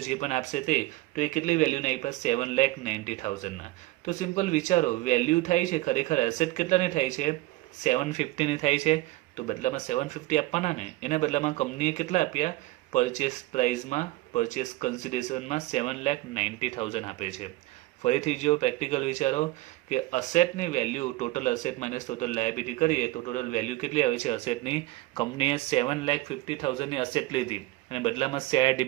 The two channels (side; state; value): left; quieter; 18.7 dB